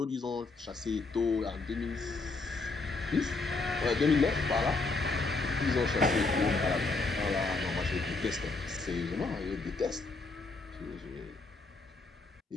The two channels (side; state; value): right; quieter; 3.7 dB